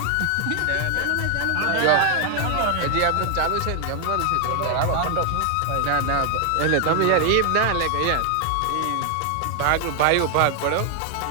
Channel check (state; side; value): different; both; correlation 0.00